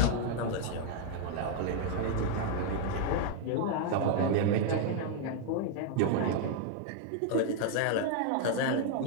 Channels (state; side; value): different; both; correlation 0.00